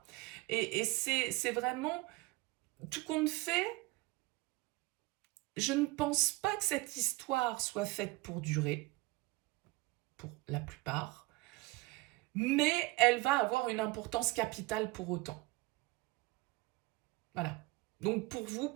Et c'est vraiment tout compte fait. Je ne pense pas que cette histoire soit faite pour durer, pour la plupart, mais elle va avoir une importance capitale pour autant. Voilà. Donc pour vous,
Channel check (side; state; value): left; quieter; 22.5 dB